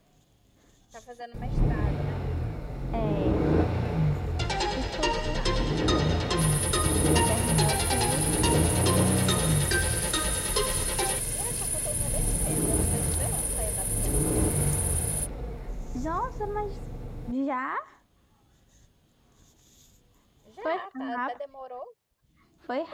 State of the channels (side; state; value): both; identical; correlation 1.00